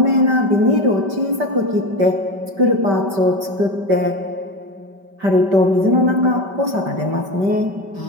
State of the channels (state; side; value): late; left; 5.1 ms